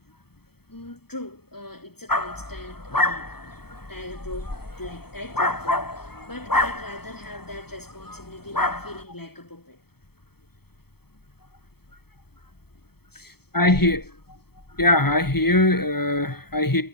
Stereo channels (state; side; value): late; right; 0.96 ms